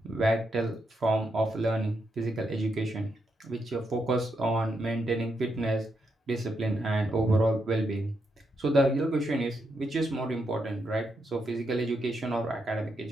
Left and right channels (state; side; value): normal; both; correlation 0.81